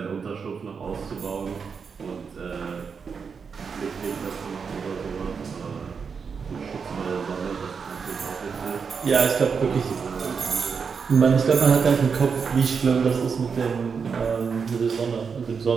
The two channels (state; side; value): quieter; left; 5.9 dB